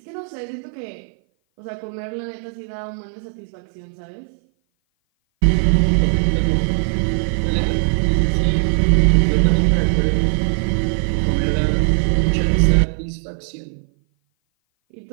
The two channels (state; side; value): silent; left; 57 dB below the other